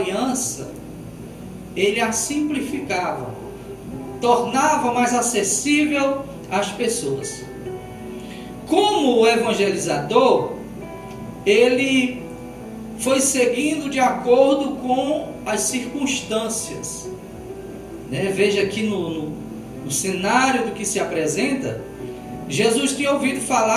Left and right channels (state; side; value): identical; both; correlation 1.00